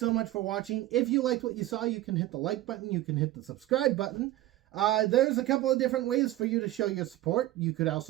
much for watching. If you liked what you saw, you can hit the like button. You can hit the subscribe button. There's a couple of different ways for you to show your support. You could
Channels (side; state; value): left; quieter; 15.5 dB